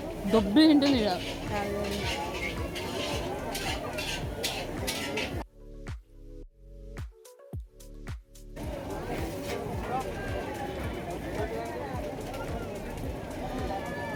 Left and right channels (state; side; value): identical; both; correlation 1.00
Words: దొబ్బి తింటుంది ఇక్కడ.